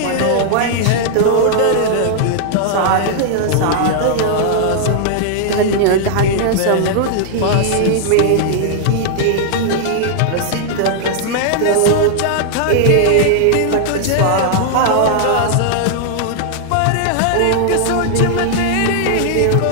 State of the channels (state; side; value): different; both; correlation -0.01